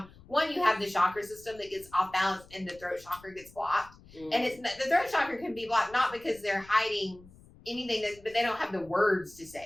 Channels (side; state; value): left; noise; rumble, 23 dB below the sound